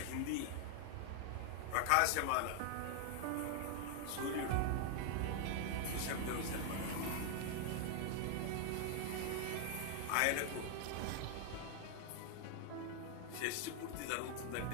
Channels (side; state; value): both; different; correlation 0.00